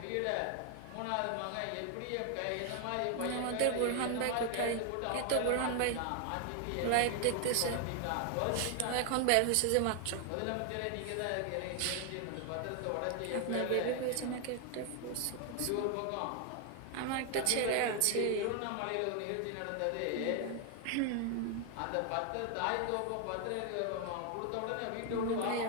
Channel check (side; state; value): both; different; correlation 0.00